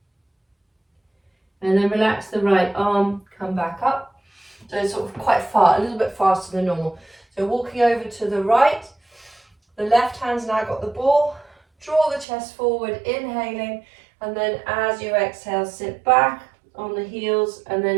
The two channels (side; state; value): left; drops out; at 12.2 s